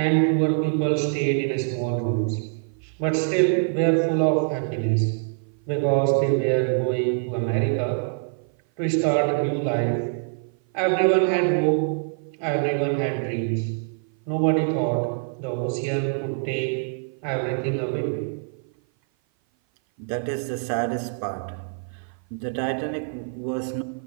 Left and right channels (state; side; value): silent; left; 56 dB below the other